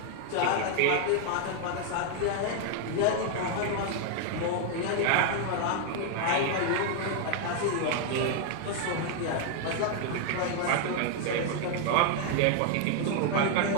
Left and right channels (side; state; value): both; different; correlation 0.00